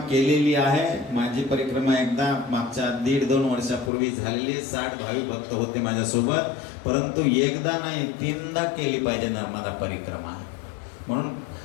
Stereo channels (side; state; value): right; drops out; at 3.9 s